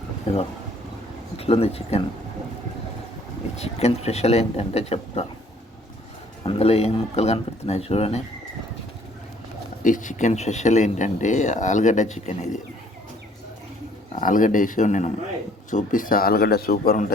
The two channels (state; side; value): normal; both; correlation 0.59